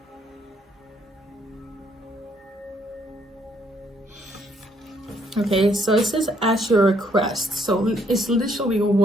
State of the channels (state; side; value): normal; both; correlation 0.68